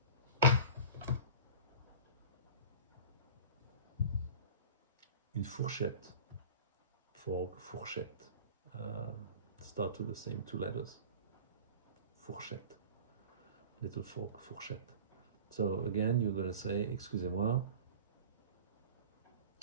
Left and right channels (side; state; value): both; inverted; correlation -0.37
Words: Une fourchette. Fork, fourchette. Start with the same 2 letters. Fourchette. Little fork, fourchette. So again, you're going to say, excusez-moi,